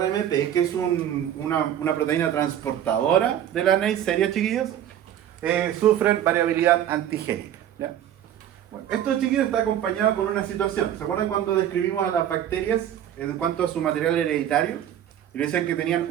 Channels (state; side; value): quieter; left; 10.8 dB